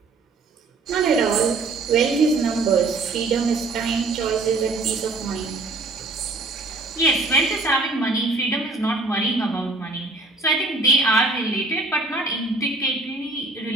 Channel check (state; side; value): quieter; left; 3.4 dB